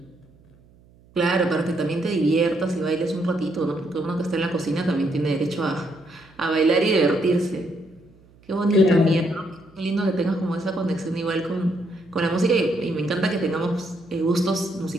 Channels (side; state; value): right; noise; hum, 28 dB below the sound